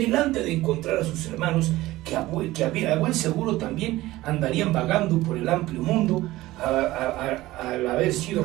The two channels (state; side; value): quieter; left; 17.5 dB